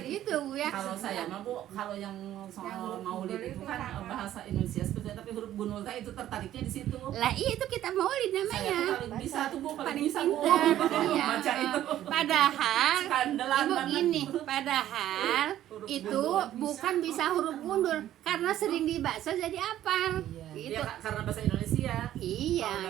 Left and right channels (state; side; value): quieter; left; 12.5 dB